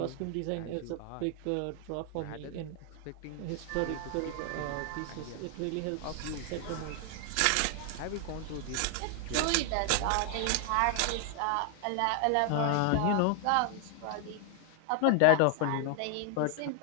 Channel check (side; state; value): both; different; correlation 0.00